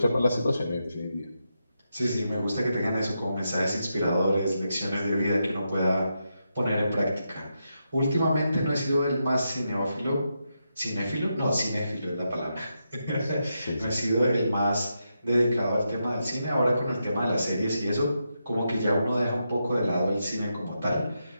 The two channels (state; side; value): inverted; both; correlation -0.85